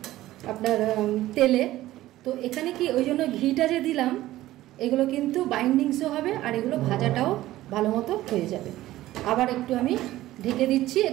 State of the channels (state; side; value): quieter; left; 15.5 dB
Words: আপনার তেলে। তো এখানে কি ওই জন্য ঘিটা যে দিলাম, এগুলো কিন্তু বাইন্ডিংসও হবে আর এগুলো ভাজাটাও ভালো মতো হয়ে যাবে। আবার একটু আমি ঢেকে দিচ্ছি।